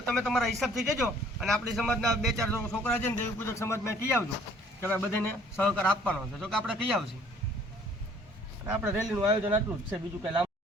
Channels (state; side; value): normal; both; correlation 0.57